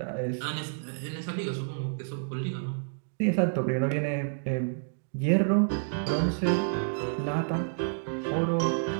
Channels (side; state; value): left; silent; digital silence